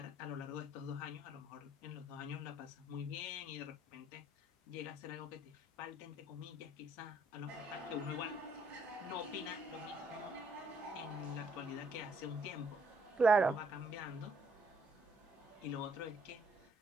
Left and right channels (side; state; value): both; normal; correlation 0.67